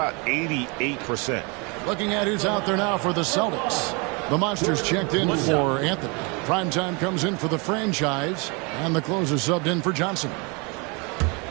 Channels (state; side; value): quieter; left; 30.7 dB